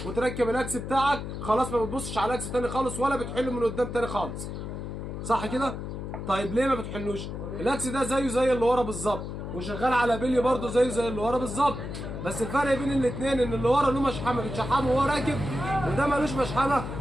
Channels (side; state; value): left; noise; hum, 7 dB below the sound